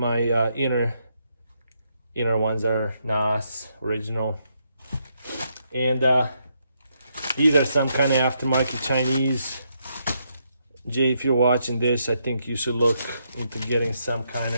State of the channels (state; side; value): inverted; both; correlation -0.78